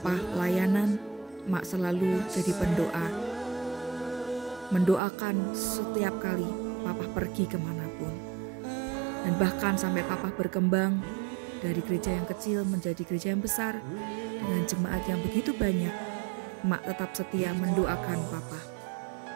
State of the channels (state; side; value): drops out; left; at 5.0 s